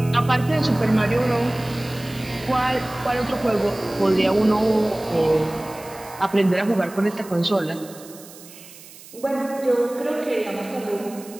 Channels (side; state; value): right; noise; hiss, 19 dB below the sound